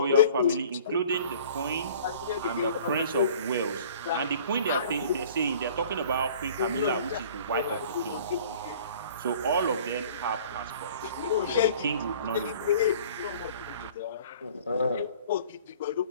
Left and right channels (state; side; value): inverted; both; correlation -0.49